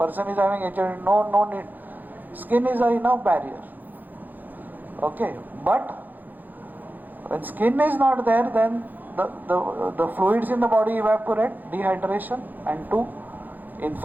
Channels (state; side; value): late; left; 0.085 ms